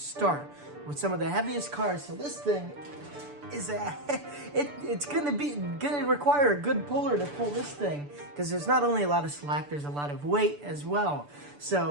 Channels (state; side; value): late; left; 6.9 ms